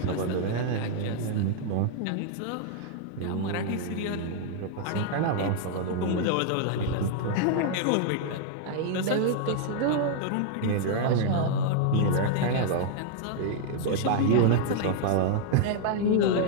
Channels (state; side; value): different; both; correlation 0.00